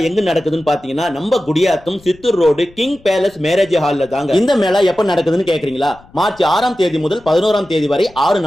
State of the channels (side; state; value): left; noise; rumble, 26 dB below the sound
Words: எங்க நடக்குதுன்னு பாத்தீங்கன்னா நம்ம Gudiyatham Chittoor road king palace marriage ஹால்ல தாங்க. இந்த மேளா எப்ப நடக்குதுன்னு கேக்குறீங்களா? மார்ச் 6ஆம் தேதி முதல் 11ஆம் தேதி வரை 6